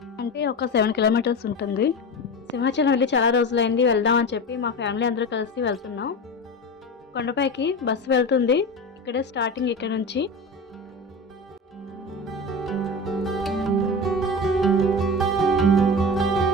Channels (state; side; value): normal; both; correlation 0.26